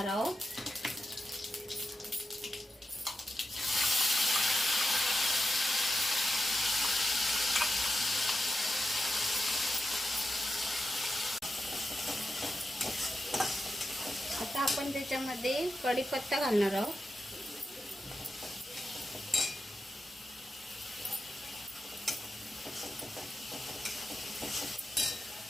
आहोत। आता आपण त्याच्यामध्ये कढीपत्ता घालणार आहोत,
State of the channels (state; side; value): normal; both; correlation 0.89